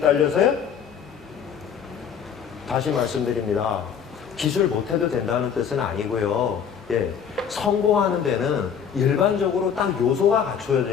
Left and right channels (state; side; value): quieter; right; 7.6 dB